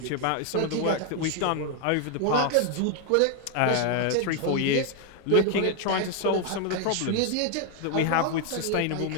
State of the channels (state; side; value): different; both; correlation 0.00